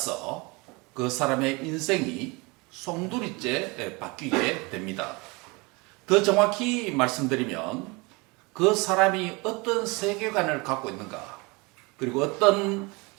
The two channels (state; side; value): quieter; left; 26.8 dB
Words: 그 사람의 인생이 송두리째 바뀌게 됩니다. 더 정확히 말씀드리면 그 사람이 어떤 세계관을 갖고 있는가, 그리고 어떤